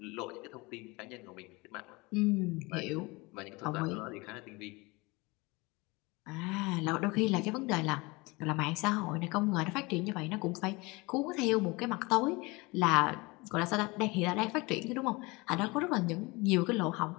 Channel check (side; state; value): right; quieter; 24.7 dB